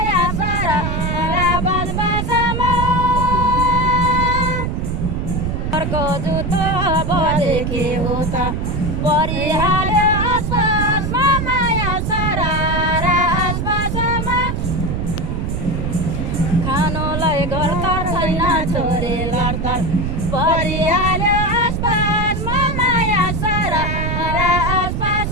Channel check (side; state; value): right; noise; rumble, 1 dB below the sound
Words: सरारा बजबजमा अर्को जुत्तो बजेकी हो त परिहाल्यो आसपासमा माया सरारा आसपासमा खानुलाई घर त छैन छोरी लड्तर परिहाल्यो आसपासमा माया सरारा